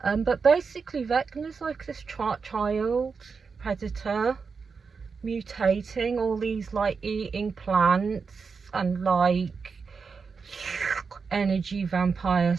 But basically Vecna's like this child predator mutating all these like eating plants and like energy vampires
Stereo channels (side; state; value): left; quieter; 5.2 dB